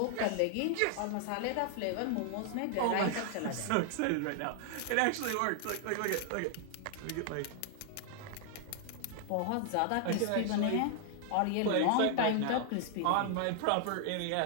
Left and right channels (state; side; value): different; both; correlation 0.00